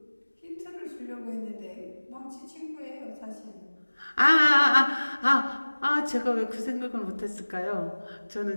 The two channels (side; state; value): both; inverted; correlation -1.00